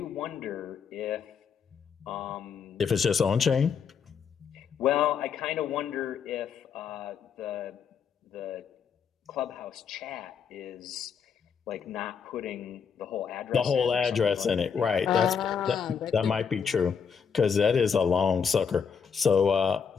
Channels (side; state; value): right; quieter; 6.6 dB